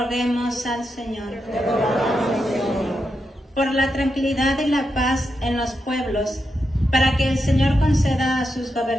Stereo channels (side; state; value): both; normal; correlation 0.86